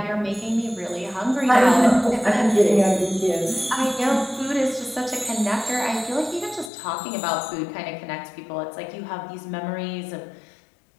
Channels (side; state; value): right; drops out; at 6.7 s